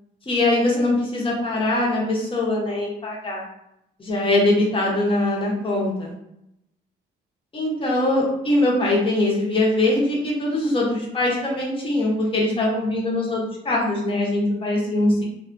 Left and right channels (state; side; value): normal; both; correlation 0.56